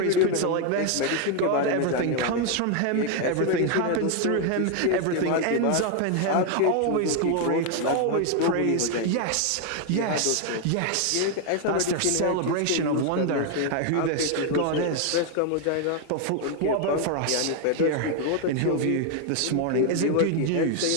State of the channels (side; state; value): both; different; correlation 0.01